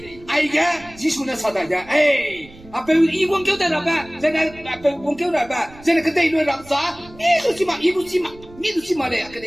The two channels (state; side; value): noise; right; rumble, 22 dB below the sound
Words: ai cái Jesus nó sao đại ja apa i wong kêu ta ba jana apa wong kêu ta ba jana kedai lu ram sa ni tu si ma le